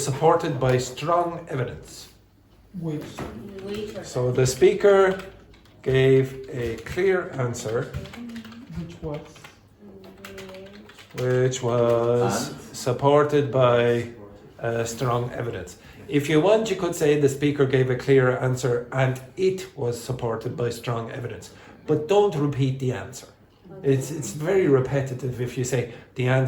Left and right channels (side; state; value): both; identical; correlation 1.00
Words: supported by strong evidence. So the speaker gave a clear answer, which was supported by strong evidence. If you want, you could say the speaker gave a clear answer and it was supported by strong evidence. But don't repeat the answer. It's very repetitive if you say the